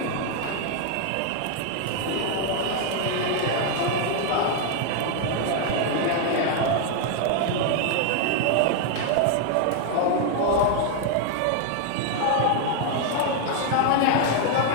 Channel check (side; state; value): both; different; correlation 0.00